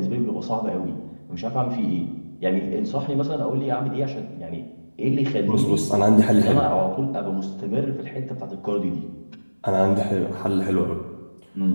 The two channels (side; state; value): both; inverted; correlation -1.00